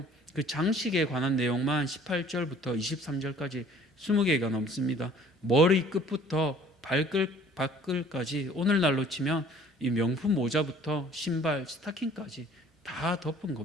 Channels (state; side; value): normal; both; correlation 0.53